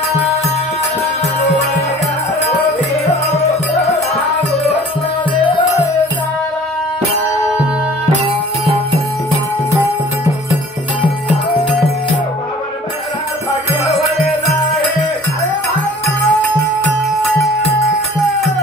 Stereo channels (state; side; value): normal; both; correlation 0.48